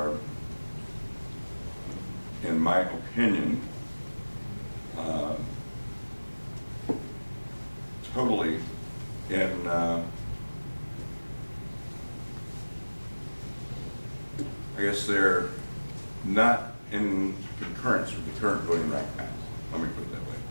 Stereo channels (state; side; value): inverted; both; correlation -1.00